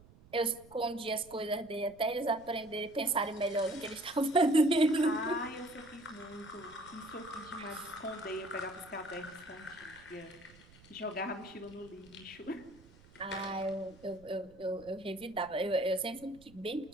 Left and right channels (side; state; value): right; noise; rumble, 24 dB below the sound